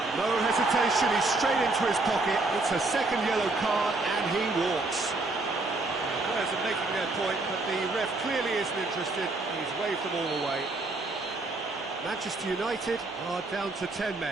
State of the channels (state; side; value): quieter; left; 3.2 dB